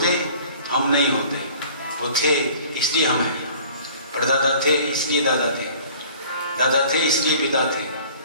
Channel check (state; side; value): inverted; both; correlation -0.49